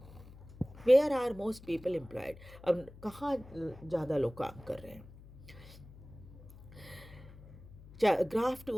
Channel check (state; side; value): noise; left; hum, 19 dB below the sound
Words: Where are most people employed, अब कहाँ ज़्यादा लोग काम कर रहे हैं। Graph